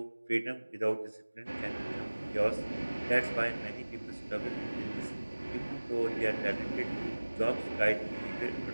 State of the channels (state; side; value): inverted; both; correlation -1.00